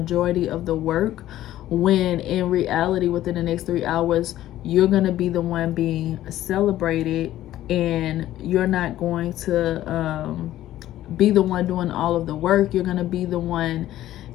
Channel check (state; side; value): quieter; right; 13.7 dB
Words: of the work, when in reality within the next 3 hours you're going to be the one being celebrated, and you're not going to be the one doing all of the work. You're going to be the one